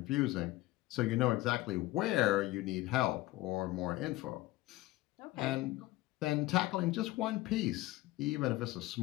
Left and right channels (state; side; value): quieter; right; 17.9 dB